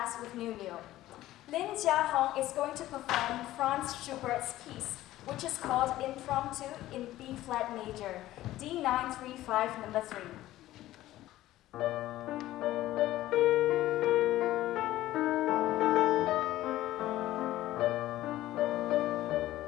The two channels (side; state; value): right; quieter; 15.2 dB